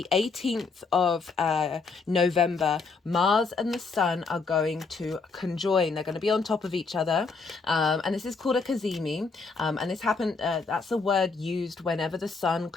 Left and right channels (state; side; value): quieter; right; 4.5 dB